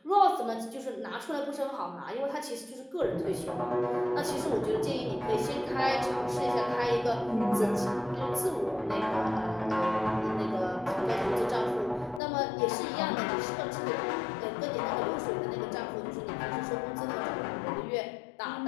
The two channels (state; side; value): drops out; right; at 12.2 s